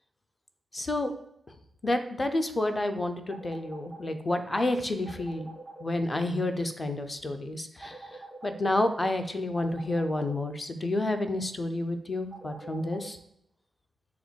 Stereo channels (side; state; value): both; normal; correlation 0.89